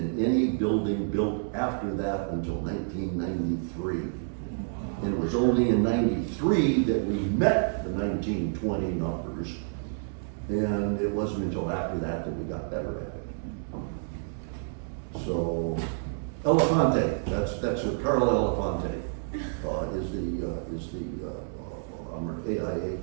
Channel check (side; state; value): left; silent; digital silence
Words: any building built after that until 1993. And it was only in 93 that we met the 1920 numbers, and it wasn't until after that that we got better at it. So, Elefante, that's what Carl Elefante is the AIA